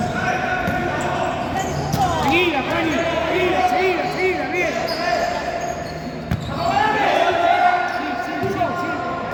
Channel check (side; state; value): both; identical; correlation 1.00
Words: Seguida, Fanny. Seguida, seguida, seguida, bien.